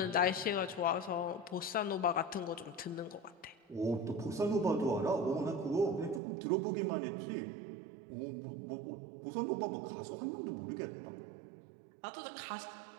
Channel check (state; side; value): drops out; left; at 6.2 s